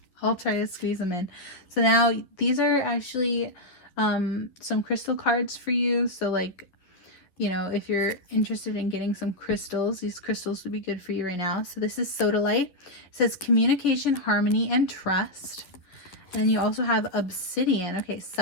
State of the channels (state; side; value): late; right; 11 ms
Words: I'll try to squeeze them in. So now these are actually some crystal cards for you. So like, you know, if you're interested in getting some crystals, these crystals would be good for you right now. So this is Sodalite. It says communication, harmony, and trust. And then you also have Obsidian. Okay,